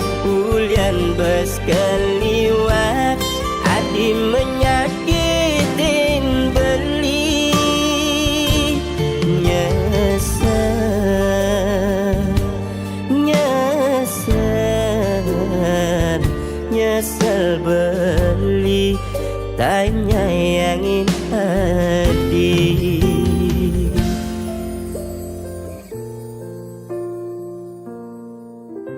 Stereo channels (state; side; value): identical; both; correlation 1.00